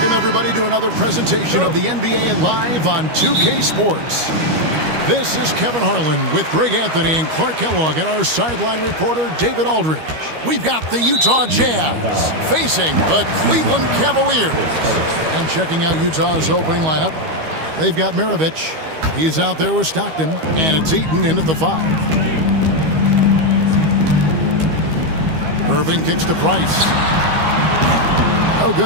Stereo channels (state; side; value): late; left; 13 ms